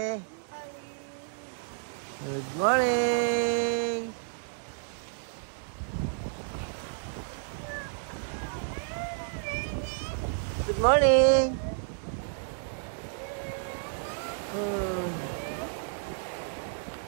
Good morning. Good morning.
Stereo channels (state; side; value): silent; left; digital silence